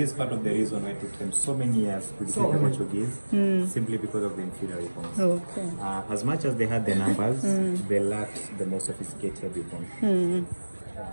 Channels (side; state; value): both; inverted; correlation -1.00